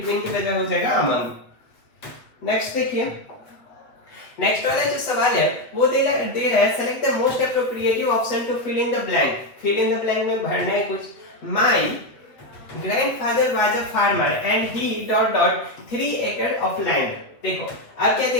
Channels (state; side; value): late; right; 7.8 ms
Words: की वजह हो जाएगा अमंग। नेक्स्ट देखिए, नेक्स्ट वाला जो सवाल है वो दे रहा है select the most appropriative option to fill in the blank. Fill in the blank में भरना है कुछ। My grandfather was a farmer and he dot dot 3 acre of land. देखो अब क्या दे